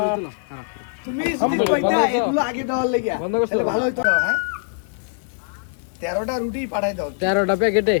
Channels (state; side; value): silent; right; digital silence